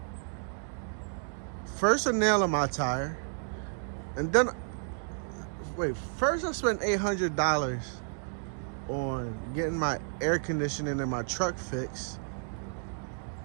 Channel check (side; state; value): left; silent; 57 dB below the other